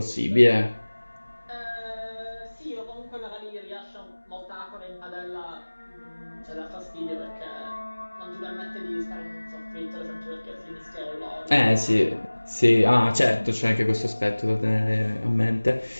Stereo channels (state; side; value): inverted; both; correlation -1.00